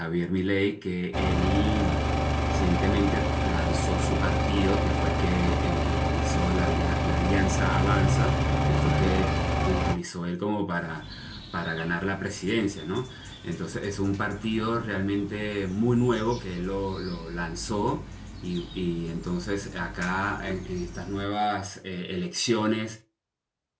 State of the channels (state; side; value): identical; both; correlation 1.00